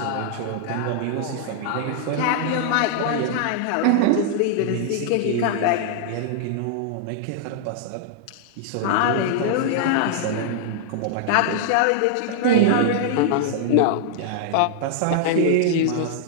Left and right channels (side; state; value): both; different; correlation -0.01